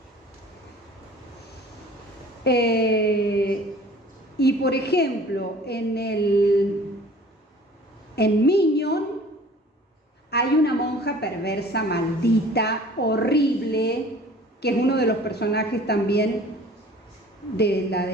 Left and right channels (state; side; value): normal; both; correlation 0.48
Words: Y por ejemplo, en Minion hay una monja perversa, maldita, horrible, que es uno de los personajes también de la